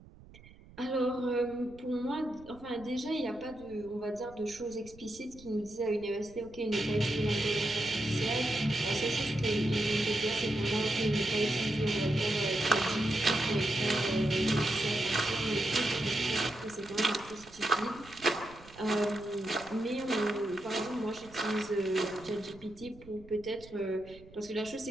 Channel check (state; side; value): noise; right; rumble, 21 dB below the sound